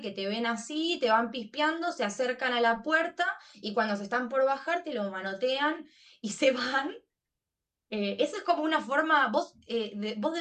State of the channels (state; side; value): identical; both; correlation 1.00